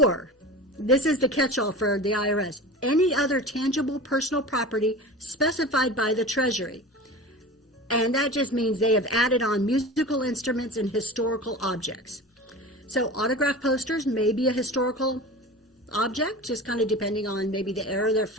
this is the catch-all for the IRS, any other tangible personal property specified by the Treasury. And that just means they have added on musical instruments and historical objects. So autograph posters may be a historical object, just kind of depending on maybe the era they're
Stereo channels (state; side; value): normal; both; correlation 0.33